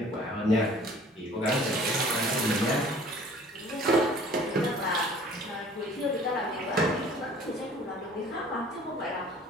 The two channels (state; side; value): normal; both; correlation 0.50